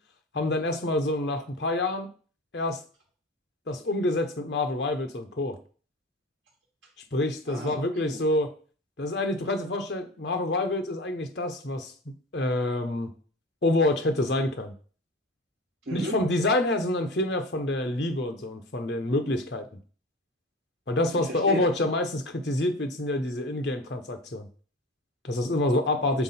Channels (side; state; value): both; normal; correlation 0.33